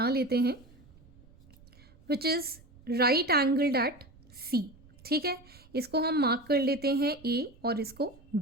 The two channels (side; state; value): right; noise; rumble, 25 dB below the sound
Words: लेते हैं which is right angled at C. ठीक है, इसको हम मार्क कर लेते हैं ए और इसको